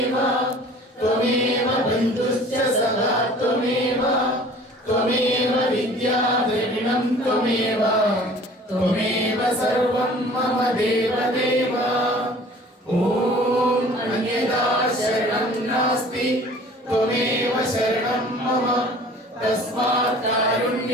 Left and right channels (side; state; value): both; normal; correlation 0.48